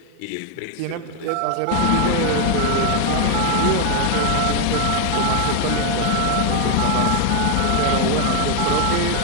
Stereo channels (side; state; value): both; different; correlation 0.01